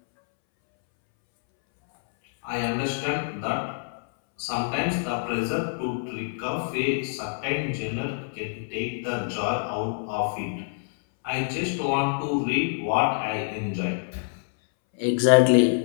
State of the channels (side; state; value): right; silent; 61 dB below the other